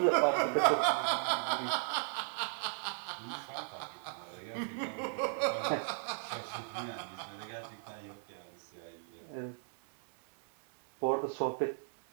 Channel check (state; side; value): silent; left; 54 dB below the other